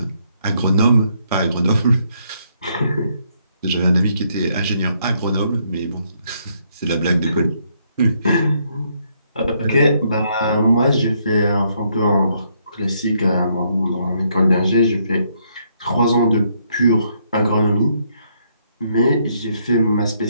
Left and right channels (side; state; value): both; inverted; correlation -0.73